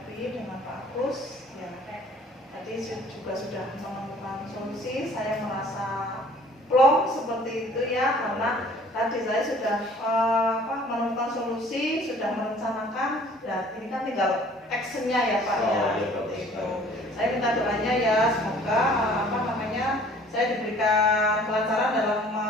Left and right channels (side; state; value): both; normal; correlation 0.53